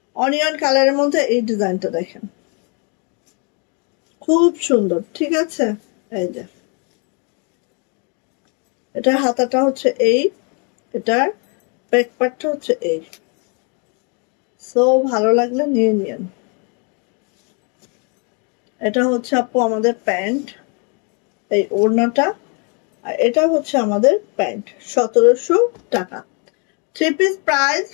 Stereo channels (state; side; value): quieter; right; 35.7 dB